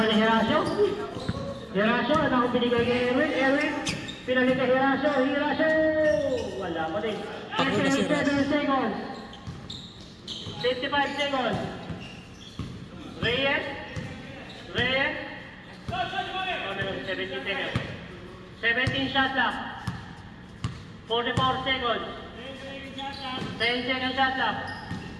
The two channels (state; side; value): identical; both; correlation 1.00